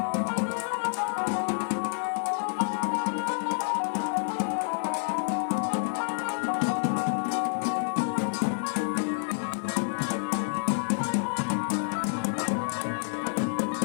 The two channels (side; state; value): right; silent; 59 dB below the other